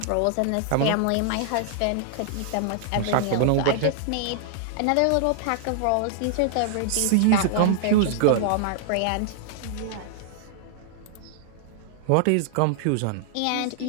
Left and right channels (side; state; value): both; different; correlation -0.01